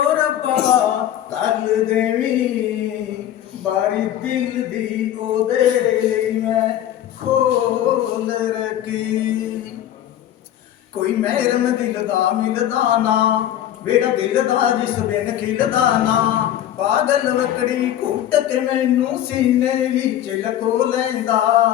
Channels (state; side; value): quieter; right; 11.7 dB